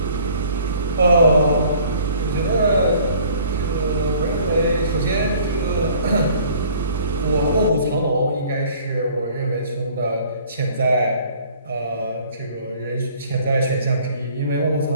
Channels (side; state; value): both; inverted; correlation -0.54